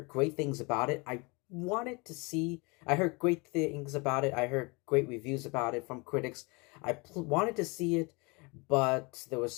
great things about it. I heard great things about it. I heard great reviews about it from critics. Wanted to see it, but there was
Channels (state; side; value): quieter; right; 28.3 dB